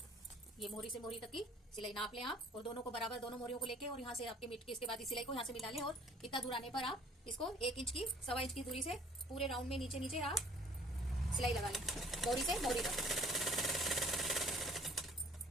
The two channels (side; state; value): both; normal; correlation 0.54